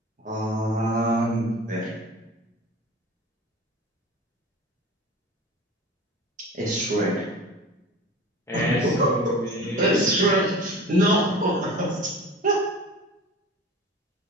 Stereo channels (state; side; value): normal; both; correlation 0.37